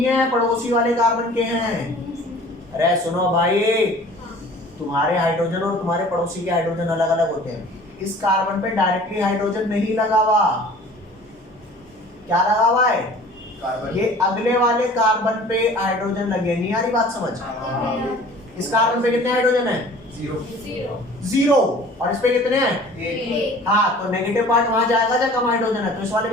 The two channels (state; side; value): normal; both; correlation 0.47